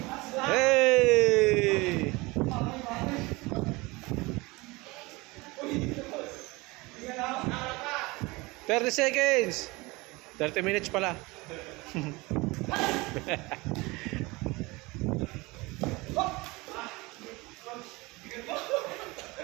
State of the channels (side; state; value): left; quieter; 23.5 dB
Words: Hey! 30 seconds. 30 minutes pala.